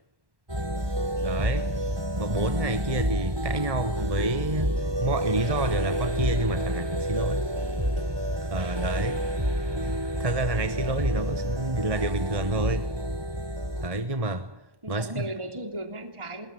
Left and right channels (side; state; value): left; late; 1.1 ms